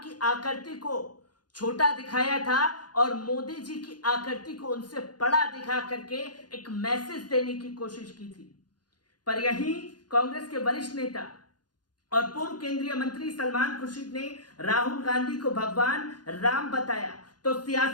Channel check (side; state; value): right; late; 0.70 ms